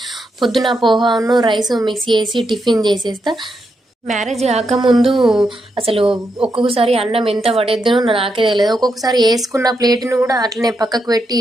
పొద్దున పోహాను రైస్ మిక్స్ చేసి టిఫిన్ చేసేస్తా. మ్యారేజ్ కాకముందు అసలు ఒక్కొక్కసారి అన్నం ఎంత పడేద్దునో నాకే తెలియదు. ఒక్కొక్కసారి వేసుకున్న ప్లేట్ను కూడా అట్లనే పక్కకు పెట్టి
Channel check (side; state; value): both; normal; correlation 0.83